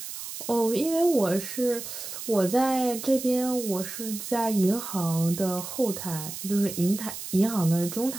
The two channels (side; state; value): right; noise; hiss, 9 dB below the sound